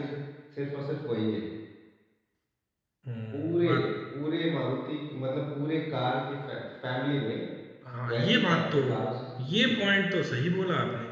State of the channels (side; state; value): both; identical; correlation 1.00